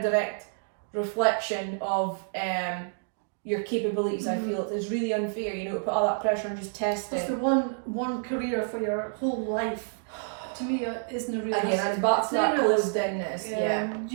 direct reflection of your capabilities. I feel it's really unfair, to put all that pressure on just testing. It's the one career for your whole life. To me, isn't a realistic. Again, and back to that closed-inness.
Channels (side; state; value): left; silent; digital silence